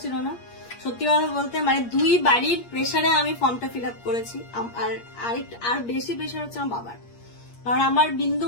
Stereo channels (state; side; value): late; right; 8.5 ms